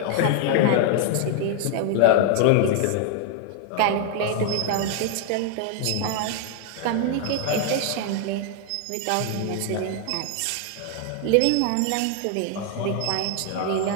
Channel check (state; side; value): different; both; correlation 0.00